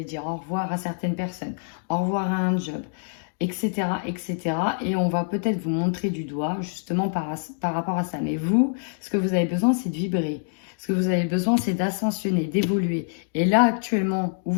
dire au revoir à certaines personnes, au revoir à un job, etc., etc. Et on va peut-être vous montrer du doigt justement par rapport à ça. Mais vous, ce que vous avez besoin, c'est de vibrer. Ce que vous avez besoin, c'est d'ascensionner, d'évoluer. Et là, actuellement, où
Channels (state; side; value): silent; right; digital silence